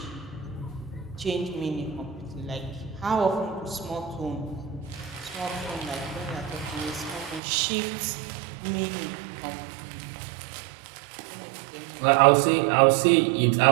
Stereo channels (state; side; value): drops out; left; at 7.4 s